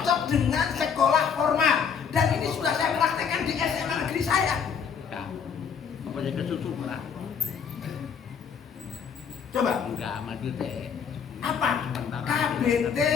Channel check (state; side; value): quieter; right; 6.8 dB